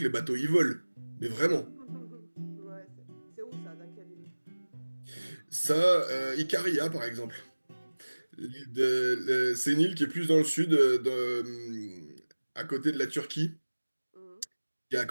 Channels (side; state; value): both; inverted; correlation -1.00